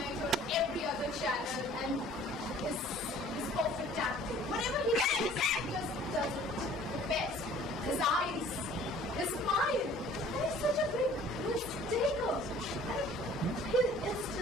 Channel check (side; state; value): both; normal; correlation 0.52